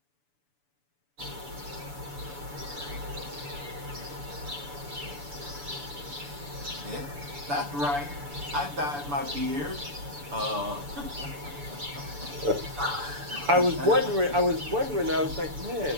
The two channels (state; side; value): late; left; 6.9 ms